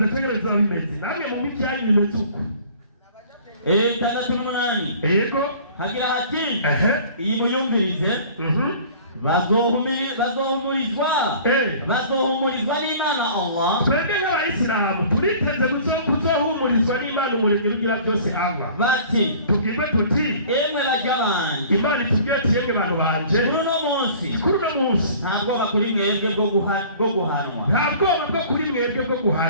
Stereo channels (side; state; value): both; inverted; correlation -0.48